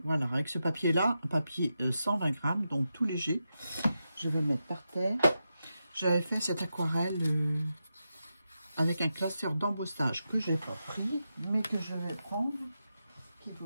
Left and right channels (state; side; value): inverted; both; correlation -0.88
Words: Voilà, avec ce papier-là, un papier 120 grammes, donc tout léger. Je vais le mettre par terre. J'avais fait cette aquarelle avec un classeur d'embossage que je n'ai pas pris, mais que je vais prendre, qui ne